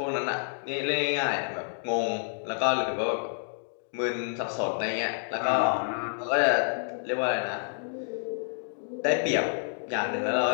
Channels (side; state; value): right; silent; digital silence